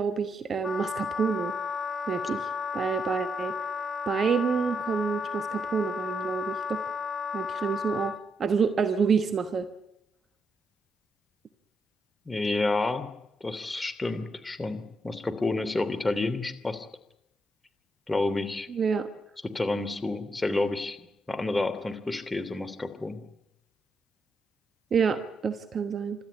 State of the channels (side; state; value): both; normal; correlation 0.80